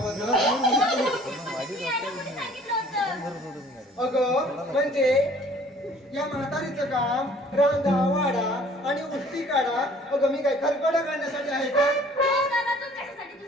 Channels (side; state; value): both; normal; correlation 0.54